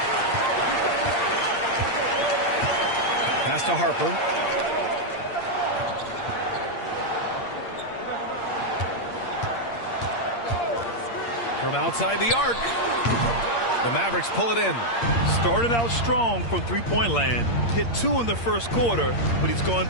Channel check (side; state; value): right; late; 8.6 ms